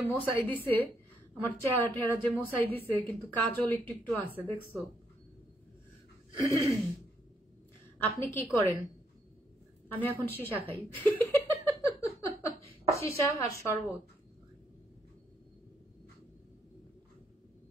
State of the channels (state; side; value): normal; both; correlation 0.75